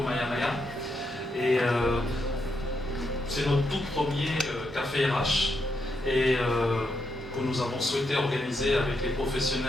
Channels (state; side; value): normal; both; correlation 0.81